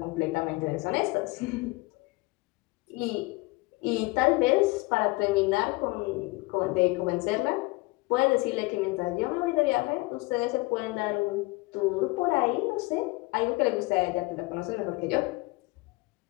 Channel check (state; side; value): quieter; right; 23.6 dB